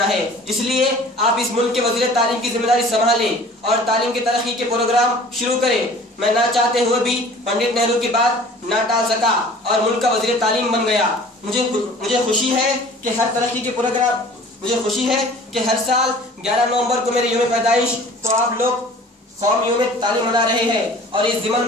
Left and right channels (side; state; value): both; normal; correlation 0.47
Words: ہے. اس لیے آپ اس ملک کے وزیر تعلیم کی ذمہ داری سنبھالیں اور تعلیم کی ترقی کے پروگرام شروع کریں. میں نہ چاہتے ہوئے بھی پنڈت نہرو کی بات نہ ٹال سکا اور ملک کا وزیر تعلیم بن گیا. مجھے خوشی ہے کہ ہر ترقی کے پروگرام ہر سال 11 نومبر کو میرے یوم پیدائش کو آپ لوگ قوم یوم تعلیم منا رہے ہیں اور اس ضمن